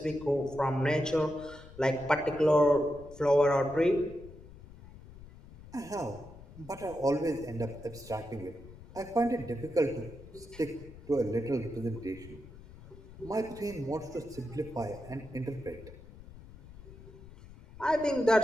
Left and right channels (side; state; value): left; noise; rumble, 18 dB below the sound